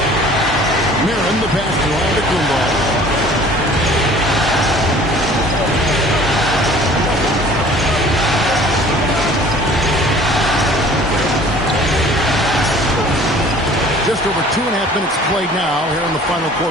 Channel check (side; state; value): both; normal; correlation 0.50